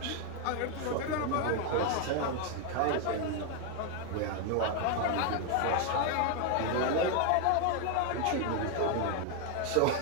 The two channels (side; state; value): both; different; correlation 0.01